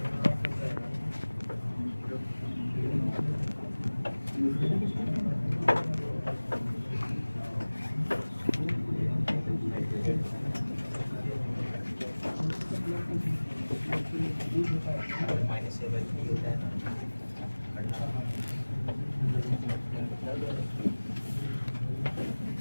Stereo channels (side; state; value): both; inverted; correlation -1.00